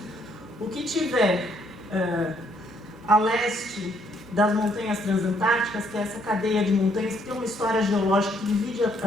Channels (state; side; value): normal; both; correlation 0.69